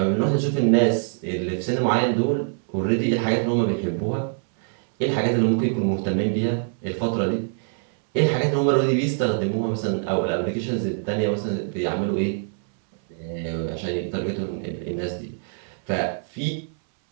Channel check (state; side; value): silent; left; 63 dB below the other